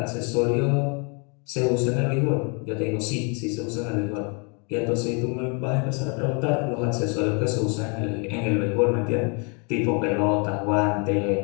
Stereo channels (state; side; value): quieter; right; 35.1 dB